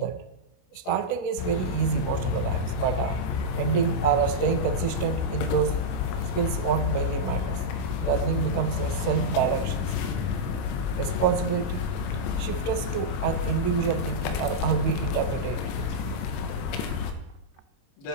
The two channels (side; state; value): right; late; 22 ms